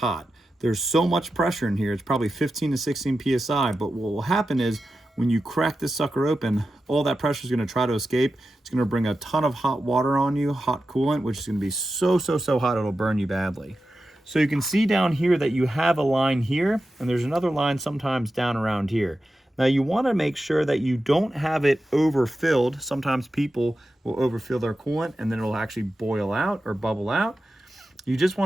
There's so much pressure in here, it's probably 15 to 16 PSI, but what will happen is when you crack this sucker open, all that pressure is gonna try to escape. It's gonna bring a ton of hot water on you, hot coolant, which is gonna be so hot it'll burn you badly. So you can see down here that you have a line here, and there's another line sometimes down around here. Now you wanna make sure that you don't have it overfilled. Sometimes people will overfill their coolant and then it'll actually boil out or bubble out. You just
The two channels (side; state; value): both; normal; correlation 0.92